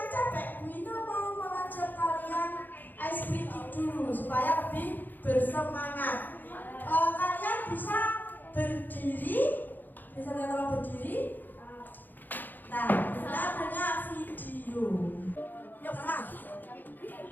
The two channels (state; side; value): late; right; 0.087 ms